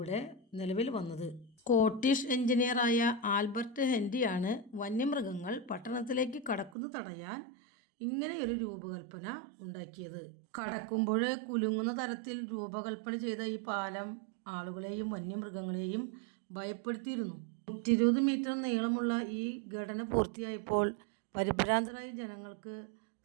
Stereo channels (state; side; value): drops out; left; at 6.7 s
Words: നിലവിൽ വന്നത്. സ്കോട്ടിഷ് എഞ്ചിനീയറായ ആൽബർട്ട് ഹെൻറിയാണ് വന്യമൃഗങ്ങൾ പട്ടണത്തിലേക്ക് കടക്കുന്നത് തടയാൻ ഇങ്ങനെയൊരു രൂപകൽപ്പന ഉണ്ടാക്കിയത്. കടക്കുമ്പോൾ കുലുങ്ങുന്ന തരത്തിൽ രൂപകൽപ്പന ചെയ്ത ഈ പാലം ആളുകളെയും വന്യമൃഗങ്ങളെയും ഭയപ്പെടുത്തിയിരുന്നു. 120 മീറ്റർ നീളമുള്ള ഈ ഘടന പൂർത്തിയായപ്പോൾ പരിഭ്രാന്തരായ ജനങ്ങൾക്ക്